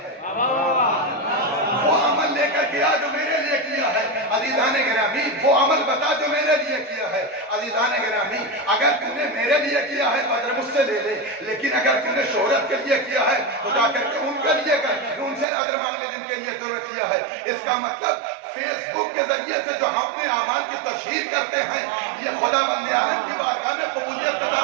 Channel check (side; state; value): left; drops out; at 15.5 s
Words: وہ عمل لے کر کے آ جو میرے لیے کیا ہے۔ عزیزان گرامی، وہ عمل بتا جو میرے لیے کیا ہے۔ عزیزان گرامی، اگر تم نے میرے لیے کیا ہے تو اجر مجھ سے لے لے، لیکن اگر تم نے شہرت کے لیے کیا ہے تو جا کر کے ان کے لیے کر، ان سے اجر مانگ لے جن کے لیے تم نے کیا ہے۔ اس کا مطلب فیس بک کے ذریعے سے جو ہم اپنے اعمال کی تشہیر کرتے ہیں، یہ خدا بند عالم کی بارگاہ میں قبولیت کا